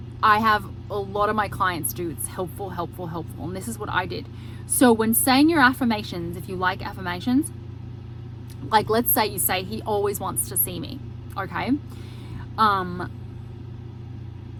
I have a lot of my clients do. It's helpful. And this is what I did. So when saying your affirmations, if you like affirmations, like let's say you say, he always wants to see me, okay?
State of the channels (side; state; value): both; identical; correlation 1.00